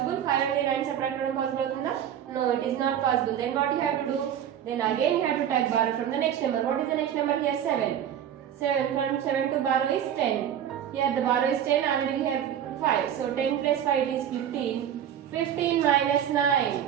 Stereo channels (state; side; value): quieter; left; 9.8 dB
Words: 5 నుండి 9 subtract చేయడం possible అవుతుందా? No, it is not possible. Then what you have to do? Then again you have to take borrow from the next number. What is the next number here? 7. 7 from 7 to borrow is 10. Here the borrow is 10, already we have 5. So 10 plus 5 it is 15. 15 minus 9.